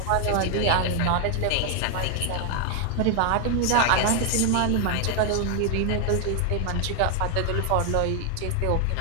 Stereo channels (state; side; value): different; both; correlation 0.00